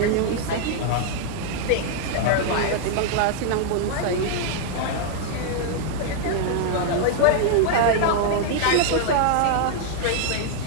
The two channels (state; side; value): different; both; correlation -0.01